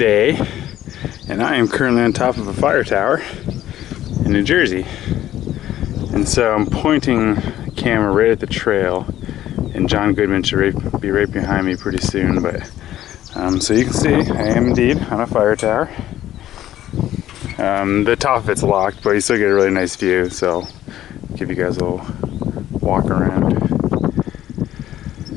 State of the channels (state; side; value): quieter; right; 12.9 dB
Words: and I am currently on top of a fire tower in New Jersey. And so I'm pointing the camera right at the trail, and John Goodman should be right behind me pretty soon, but so you can see I am indeed on a fire tower. The top of it's locked, but you still get a really nice view, so I'll give you guys a little walk around.